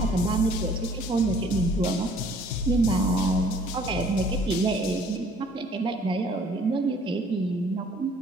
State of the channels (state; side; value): normal; both; correlation 0.56